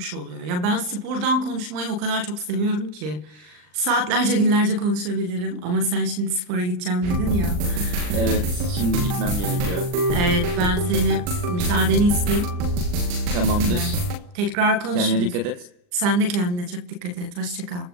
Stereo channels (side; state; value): left; late; 39 ms